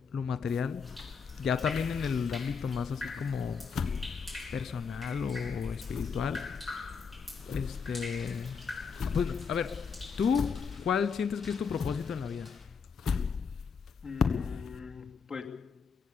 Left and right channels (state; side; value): quieter; right; 5.8 dB